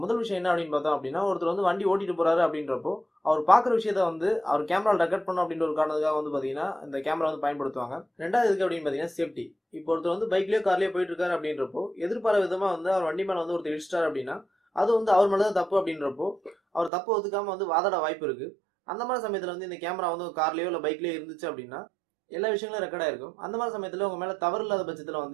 முதல் விஷயம் என்ன அப்படின்னு பார்த்தோம் அப்படின்னா, ஒருத்தர் வந்து வண்டி ஓட்டிட்டு போறாரு அப்படின்றப்போ அவர் பாக்குற விஷயத்த வந்து அவர் கேமரா ரெக்கார்ட் பண்ணணும் அப்படின்ற ஒரு காரணத்துக்காக வந்து பாத்தீங்கன்னா இந்த கேமரா வந்து பயன்படுத்துவாங்க. ரெண்டாவது எதுக்கு அப்படின்னு பாத்தீங்கன்னா சேஃப்டி. இப்போ ஒருத்தர் வந்து பைக்லயோ கார்லயோ போயிட்டு இருக்காரு அப்படின்றப்போ எதிர்பாராத விதமா வந்து அவர் வண்டி மேல வந்து ஒருத்தர் இடிச்சிட்டாரு அப்படின்னா அது வந்து அவர் மேலதான் தப்பு அப்படின்றப்போ அவர் தப்பு ஒத்துக்காம வந்து வாதாட வாய்ப்பு இருக்கு. அந்த மாதிரி சமயத்துல வந்து இந்த கேமரா வந்து கார்லயோ இல்ல பைக்லயோ இருந்துச்சு அப்படின்னா எல்லா விஷயங்களும் ரெக்கார்ட் ஆயிருக்கும். அந்த மாதிரி சமயத்துல உங்க மேல தவறு இல்லாத பட்சத்துல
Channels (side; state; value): left; drops out; at 16.9 s